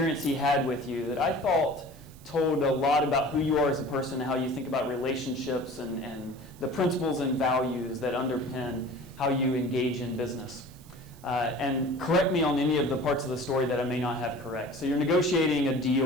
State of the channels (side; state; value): right; noise; hiss, 25 dB below the sound